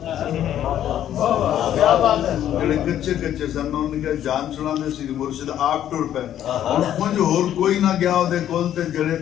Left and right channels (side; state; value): right; quieter; 11.1 dB